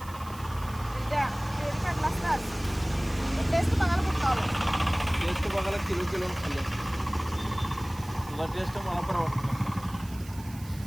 द्या डेअरी काढला असतात. टेस्ट बघायला कुठं आलं. टेस्ट बघायला किलो खाल्लं. तुला टेस्ट मला पण आवडतं.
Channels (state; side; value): noise; right; hiss, 19 dB below the sound